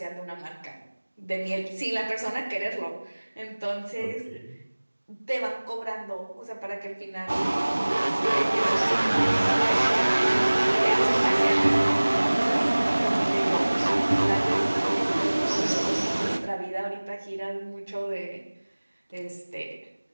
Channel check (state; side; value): inverted; both; correlation -1.00